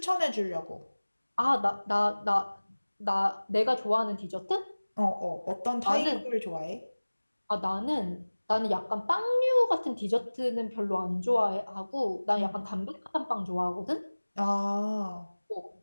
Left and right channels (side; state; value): both; inverted; correlation -1.00